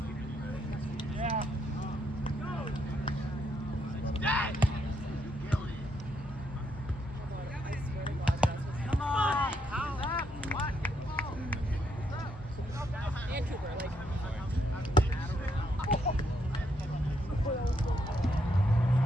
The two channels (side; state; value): both; normal; correlation 0.76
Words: Yeah. Come on. What? And Cooper, like.